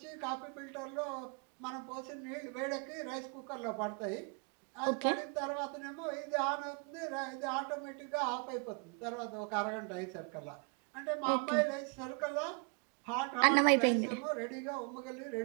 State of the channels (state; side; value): quieter; left; 36.7 dB